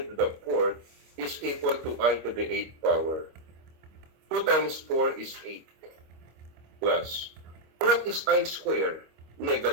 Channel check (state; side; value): late; left; 25 ms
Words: to the 4th is equal to I to the 8th power. 2 times 4 is 8 plus. What is I square?